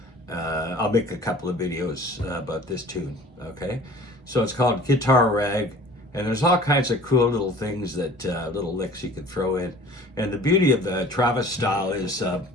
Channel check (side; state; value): both; normal; correlation 0.46